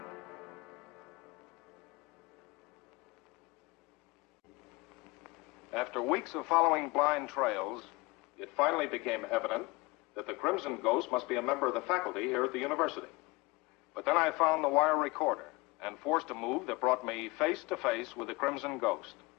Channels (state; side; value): quieter; right; 24.2 dB